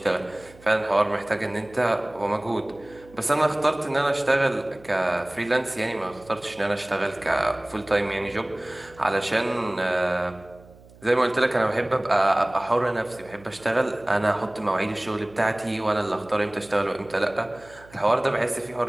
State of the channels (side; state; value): right; noise; hum, 24 dB below the sound